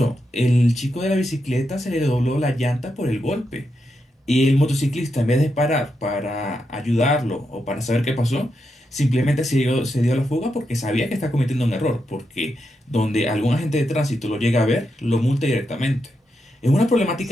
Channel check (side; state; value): both; normal; correlation 0.85